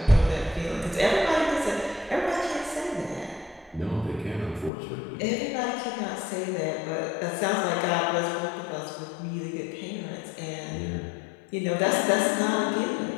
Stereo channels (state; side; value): drops out; right; at 4.7 s